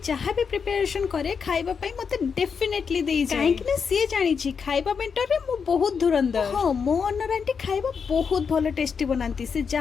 जहां भी प्रिपरेशन करे खाइबा पई मते डेफिनेटली देई जाय काहे कि से जानि छी खाइबा बेंटर रे मो बहुत धुरंधर हां मो ओनर आंटी खाइबा बहुत भलो टेस्टी बनांती से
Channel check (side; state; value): right; quieter; 6.1 dB